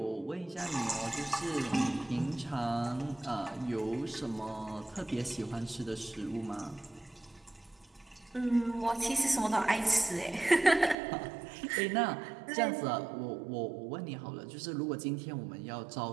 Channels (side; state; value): left; drops out; at 11.0 s